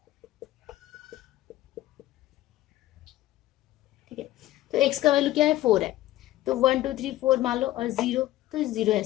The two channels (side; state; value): right; quieter; 15.7 dB